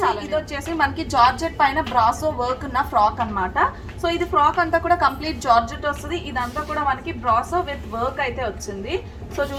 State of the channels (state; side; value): identical; both; correlation 1.00